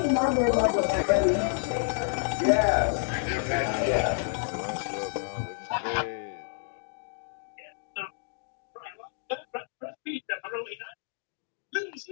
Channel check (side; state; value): right; silent; 58 dB below the other